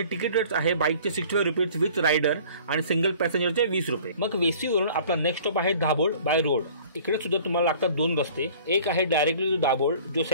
तिकीट रेट आहे बाईकचे 65 रुपीज विथ रायडर आणि सिंगल पॅसेंजरचे 20 रुपये। मग वेसवीवरून आपला नेक्स्ट स्टॉप आहे दाभोळ बाय रोड। इकडे सुद्धा तुम्हाला लागतात 2 रस्ते। एक आहे डायरेक्टली टू दाभोळ, जो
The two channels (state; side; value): inverted; both; correlation -0.49